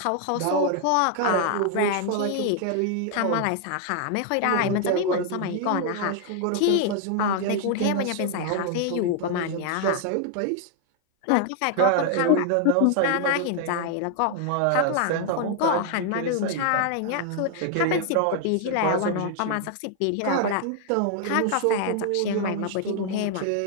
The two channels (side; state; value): both; different; correlation 0.00